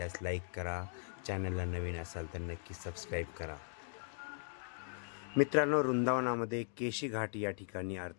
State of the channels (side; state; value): right; silent; digital silence